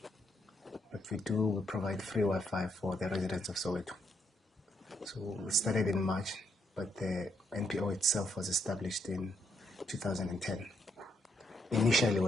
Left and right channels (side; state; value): both; normal; correlation 0.75